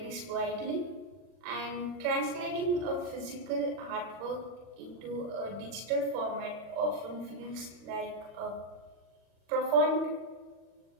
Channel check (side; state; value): left; late; 40 ms